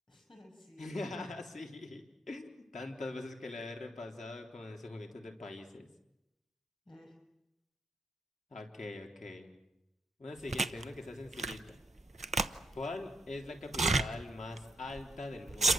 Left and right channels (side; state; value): both; normal; correlation 0.75